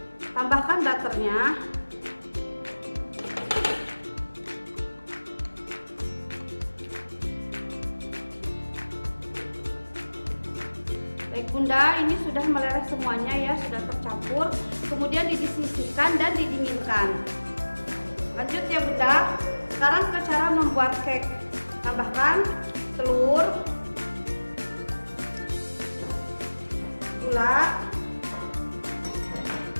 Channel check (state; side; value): inverted; both; correlation -1.00